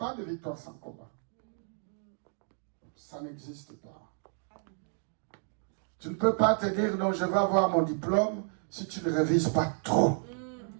de victoire sans combat. Ça n'existe pas. Tu ne peux pas te dire, non, je vais avoir mon diplôme si tu ne révises pas trop.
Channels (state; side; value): silent; left; 57 dB below the other